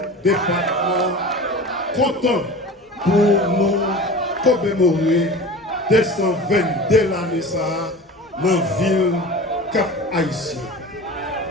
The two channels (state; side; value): normal; both; correlation 0.35